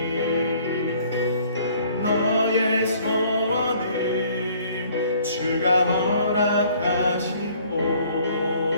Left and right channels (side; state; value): both; inverted; correlation -0.58